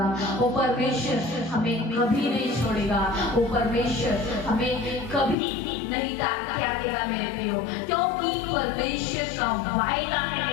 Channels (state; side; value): drops out; right; at 5.4 s